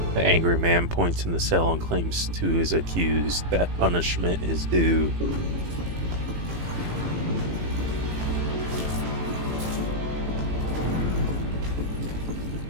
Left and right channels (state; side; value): late; left; 18 ms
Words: The angry man points in the cell and claims to his accused that punishment is due.